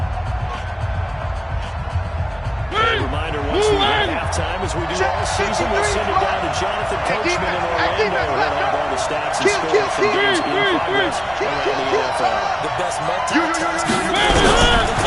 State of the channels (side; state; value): both; identical; correlation 1.00